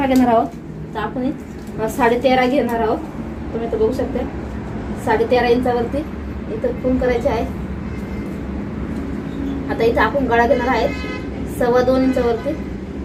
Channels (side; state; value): both; identical; correlation 1.00